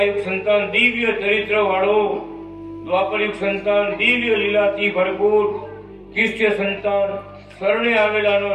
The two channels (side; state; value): both; identical; correlation 1.00